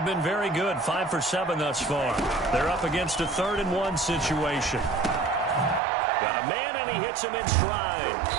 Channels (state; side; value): drops out; left; at 5.8 s